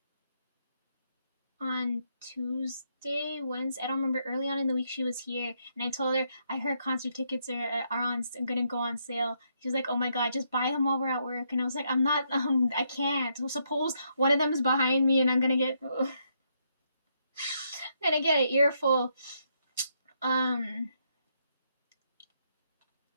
on Tuesday, Wednesday. I don't remember. Early on in the week, she was here, and I told her I heard concert tickets are gonna go on sale. She was like, "Oh my god, just buy them while we're at work." And I was like, "I'm not. I can't. So suppose one of them is behind me, and I'm gonna get gonna get an earful."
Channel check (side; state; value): both; inverted; correlation -0.76